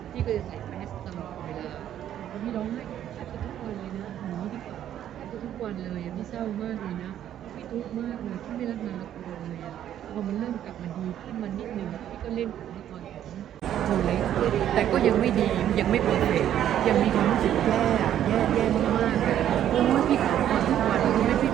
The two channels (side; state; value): left; quieter; 10.9 dB